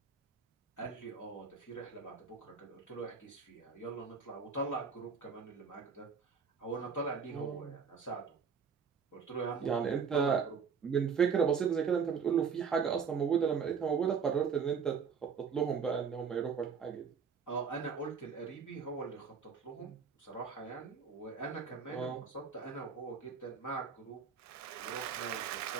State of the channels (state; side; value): quieter; left; 6.2 dB